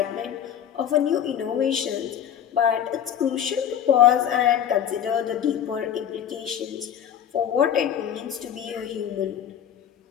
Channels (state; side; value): quieter; right; 9.4 dB